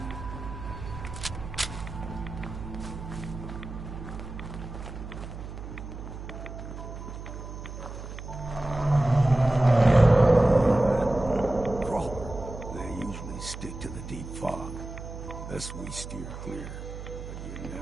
They usually stick to the deep fog. Thus we steer clear. But you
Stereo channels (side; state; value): right; noise; hum, 10 dB below the sound